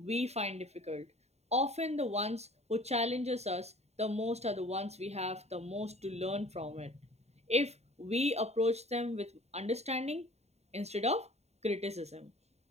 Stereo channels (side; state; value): left; late; 0.31 ms